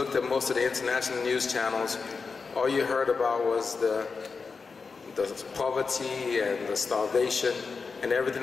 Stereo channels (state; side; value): quieter; right; 4.8 dB